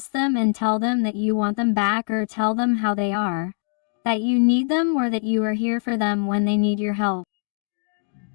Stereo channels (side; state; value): right; silent; digital silence